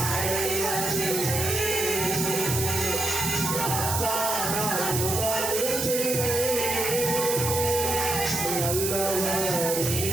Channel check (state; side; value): noise; right; hiss, 1 dB below the sound